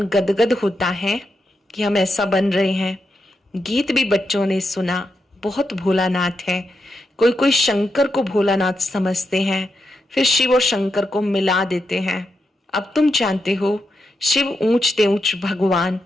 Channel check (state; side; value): normal; both; correlation 0.85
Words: गदगद होता है कि हम ऐसा बन रहे हैं। गीत भी बच्चों ने सुना, बहुत भोलानाथ है। कोई कोई शंकर को भोलानाथ समझते हैं, फिर शिव और शंकर को मिला देते हैं। अब तुम जानते हो, शिव ऊंच ते ऊंच भगवान,